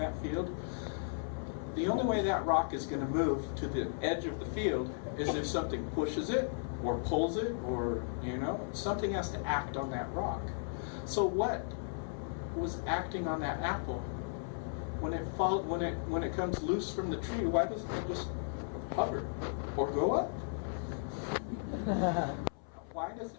field, the only way that rock is going to move to the edge of the field is if something pushes it, or pulls it, or something has to act on that rock. So what was acting on that apple when it comes loose from the tree? Why doesn't it just hover or go up? Why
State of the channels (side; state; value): right; silent; 54 dB below the other